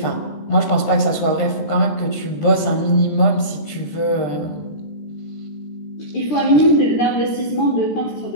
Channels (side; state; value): right; late; 14 ms